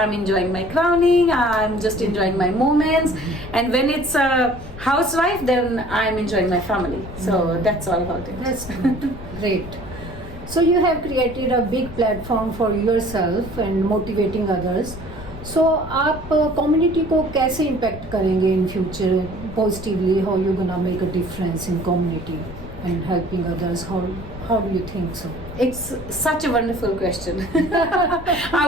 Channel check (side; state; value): left; noise; rumble, 13 dB below the sound